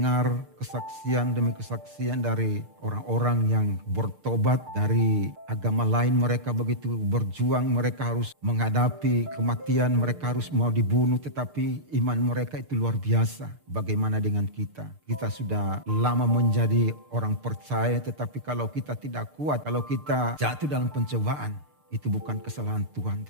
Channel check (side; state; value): left; late; 6.6 ms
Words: kesaksian demi kesaksian dari orang-orang yang bertobat dari agama lain. Mereka begitu berjuang, mereka harus menghadapi kematian, mereka harus mau dibunuh, tetapi iman mereka itu luar biasa. Bagaimana dengan kita? Kita sudah lama menjadi orang percaya, tetapi kalau kita tidak kuat, kalau kita jatuh dalam pencobaan, itu bukan kesalahan Tuhan,